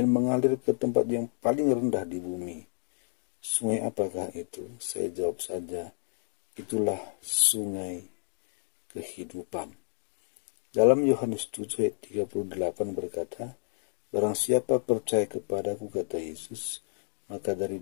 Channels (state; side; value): silent; right; 58 dB below the other